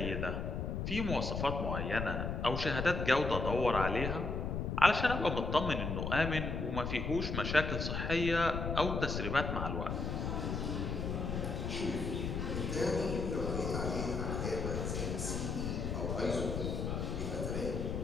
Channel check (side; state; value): left; noise; rumble, 2 dB below the sound